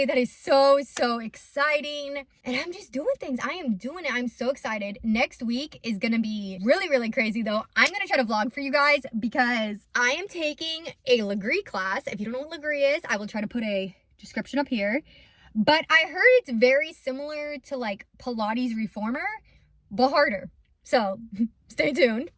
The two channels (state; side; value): identical; both; correlation 1.00